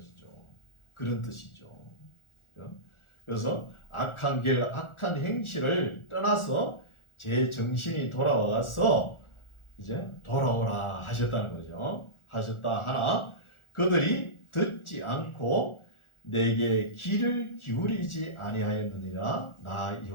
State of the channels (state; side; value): late; right; 1.4 ms